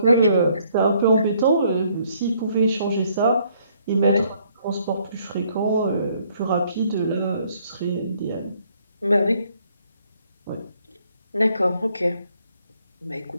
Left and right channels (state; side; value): inverted; both; correlation -0.67